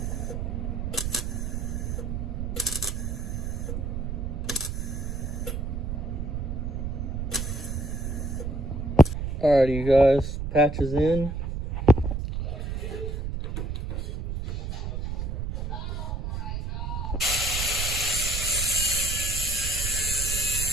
Alrighty, you guys, patches in.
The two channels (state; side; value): noise; right; rumble, 3 dB below the sound